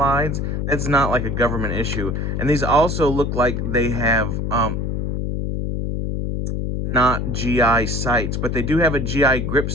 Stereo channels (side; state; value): left; noise; hum, 1 dB below the sound